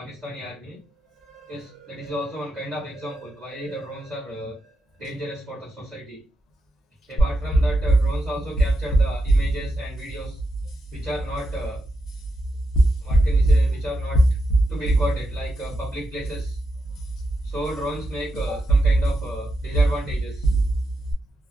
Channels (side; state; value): both; normal; correlation 0.86